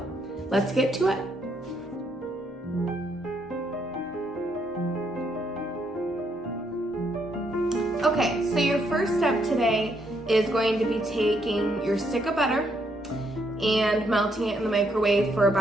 let's get to it. Okay, so your first step today is going to be taking your stick of butter and melting it in the microwave for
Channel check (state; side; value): normal; both; correlation 0.74